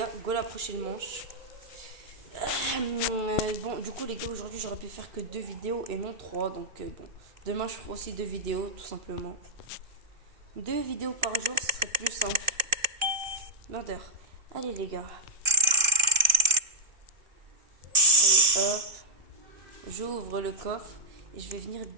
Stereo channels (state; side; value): late; left; 2.7 ms